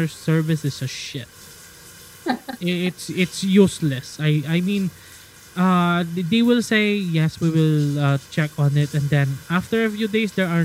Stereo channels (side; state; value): both; identical; correlation 1.00